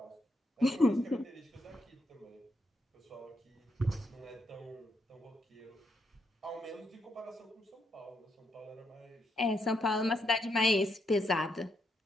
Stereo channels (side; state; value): both; normal; correlation 0.78